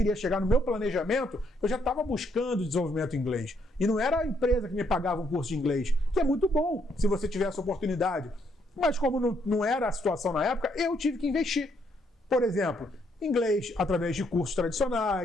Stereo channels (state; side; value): normal; both; correlation 0.73